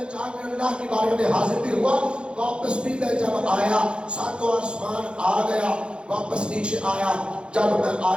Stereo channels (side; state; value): left; late; 0.055 ms